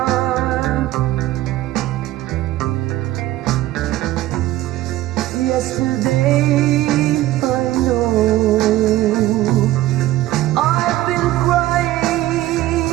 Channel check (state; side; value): quieter; left; 15.5 dB